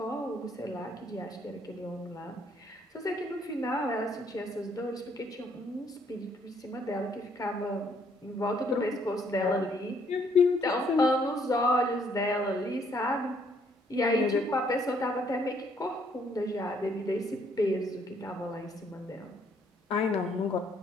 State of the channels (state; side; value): normal; both; correlation 0.67